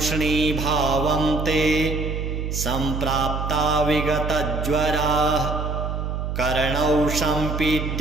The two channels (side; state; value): right; noise; hum, 3 dB below the sound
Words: ते सम्प्राप्ता विगतज्वराः कर्णौ